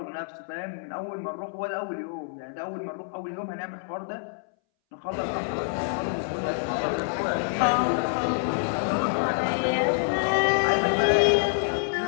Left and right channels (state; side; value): silent; right; 60 dB below the other